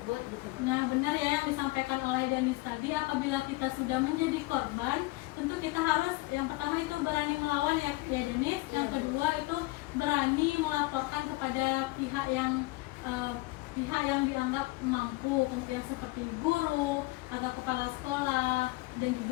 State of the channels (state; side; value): quieter; right; 21.7 dB